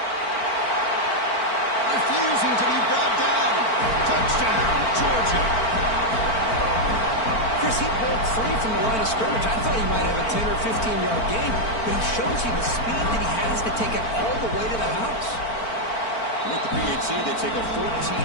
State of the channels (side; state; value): right; late; 4.5 ms